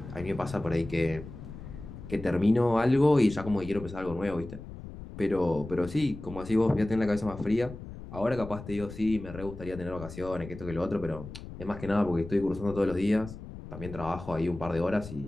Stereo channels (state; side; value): noise; left; rumble, 12 dB below the sound